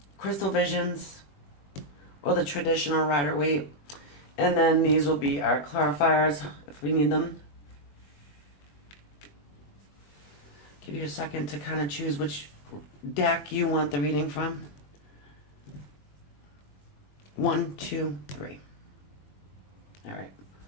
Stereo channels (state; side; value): late; right; 21 ms